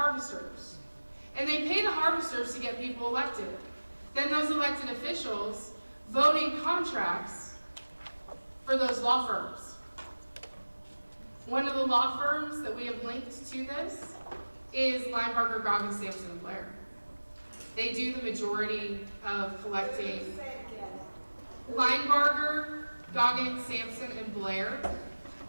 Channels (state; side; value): inverted; both; correlation -1.00